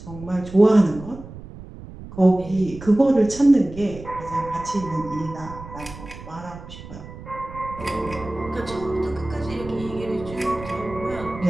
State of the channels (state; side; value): noise; right; rumble, 14 dB below the sound